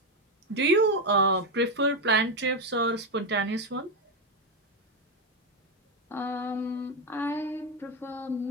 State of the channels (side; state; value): both; normal; correlation 0.09